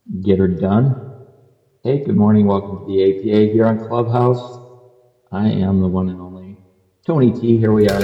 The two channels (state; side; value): identical; both; correlation 1.00